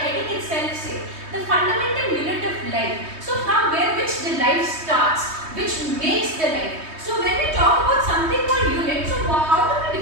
itself say? The fundamental unit of life. So from where which the life starts, which makes the life. So when we talk about something called unit, so how do we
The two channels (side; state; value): left; late; 3.2 ms